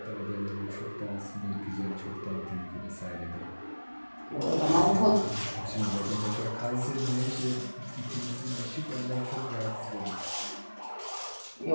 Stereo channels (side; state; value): both; inverted; correlation -1.00